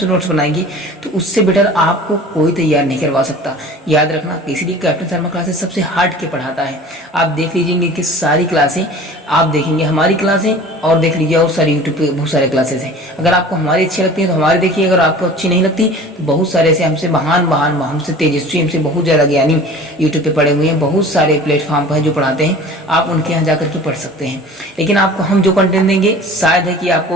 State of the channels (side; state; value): both; normal; correlation 0.42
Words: नोट्स बनाएंगे, तो उससे बेटर आपको कोई तैयार नहीं करवा सकता। याद रखना, इसलिए कैप्टन शर्मा क्लासेस सबसे हट के पढ़ाता है। आप देख लीजिएंगे कि सारी क्लासें आप देखेंगे, हमारी क्लासें, और देख लीजिए और सारी यूट्यूब पे बहुत सारे क्लासेस हैं। अगर आपको हमारी अच्छी लगती है तो हमारी देखिए, अगर आपको अच्छी नहीं लगती तो बहुत सारे ऐसे हमसे महान हमसे तेजस्वी, हमसे बहुत ज़्यादा ज्ञानी यूट्यूब पे पढ़े हुए हैं, बहुत सारे प्लेटफॉर्म पर जो पढ़ाते हैं, आप उनके यहाँ जाकर के पढ़ सकते हैं। लेकिन आपको हम जो कंटेंट देंगे शायद है कि